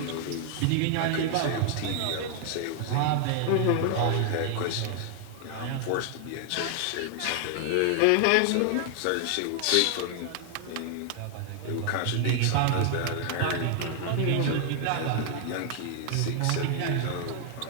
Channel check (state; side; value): different; both; correlation 0.00